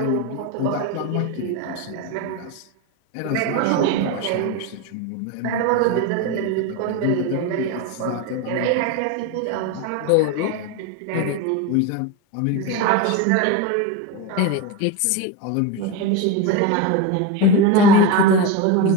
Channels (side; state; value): both; different; correlation 0.05